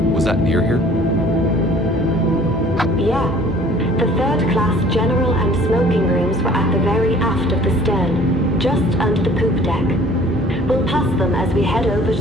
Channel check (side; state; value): both; normal; correlation 0.52